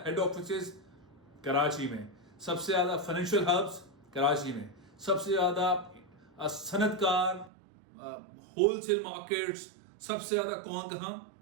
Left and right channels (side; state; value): left; drops out; at 7.5 s